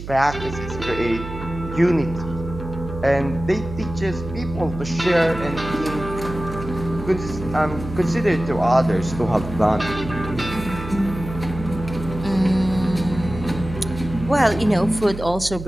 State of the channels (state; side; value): noise; right; hum, 10 dB below the sound